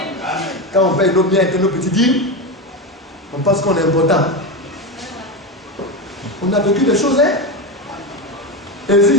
Quand on paye nos biens et nos petits dîmes, on pense qu'on est important. On a vécu des choses, hein? Et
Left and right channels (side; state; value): both; normal; correlation 0.17